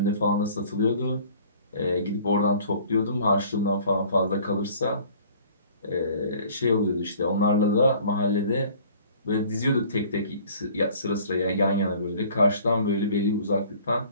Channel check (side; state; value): both; inverted; correlation -0.51